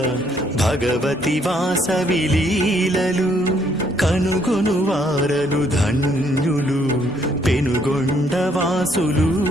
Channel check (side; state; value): both; normal; correlation 0.68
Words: భగవతి వాసవి లీలలు కనుగొను వారలు ధన్యులు పెనుగొండవాసులు